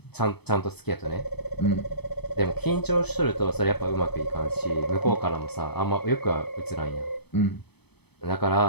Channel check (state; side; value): late; right; 0.97 ms